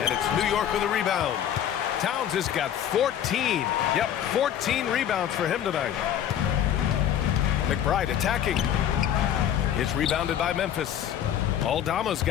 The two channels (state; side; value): quieter; right; 10.1 dB